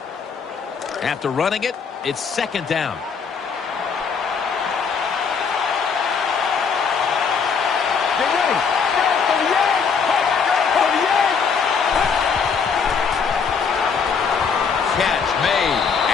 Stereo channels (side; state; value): right; quieter; 5.9 dB